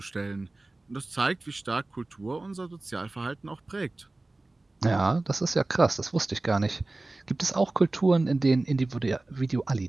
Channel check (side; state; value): left; quieter; 3.0 dB